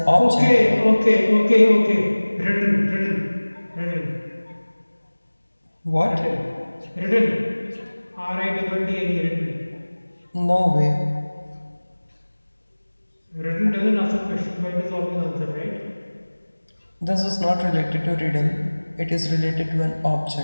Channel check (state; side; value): inverted; both; correlation -1.00